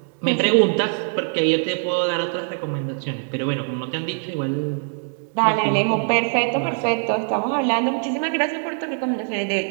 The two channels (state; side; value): silent; left; 64 dB below the other